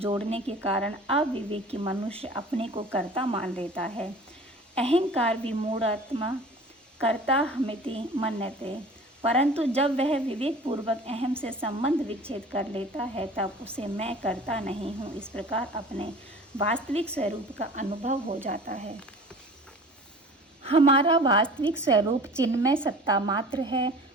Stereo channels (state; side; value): normal; both; correlation 0.42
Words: जोड़ने के कारण अविवेकी मनुष्य अपने को कर्ता मान लेता है। अहंकार विमूढ़ात्मा कर्ताहमिति मन्यते, परंतु जब वह विवेक पूर्वक अहम से संबंध विच्छेद कर लेता है तब उसे मैं कर्ता नहीं हूँ इस प्रकार अपने वास्तविक स्वरूप का अनुभव हो जाता है। हमारा वास्तविक स्वरूप चिन्मय सत्ता मात्र है।